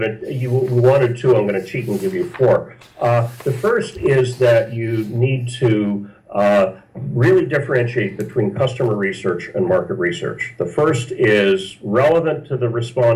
you wanted 2, I'm going to cheat and give you 4. The first is that you need to really differentiate between customer research and market research. The first is relevant to the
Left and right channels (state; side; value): identical; both; correlation 1.00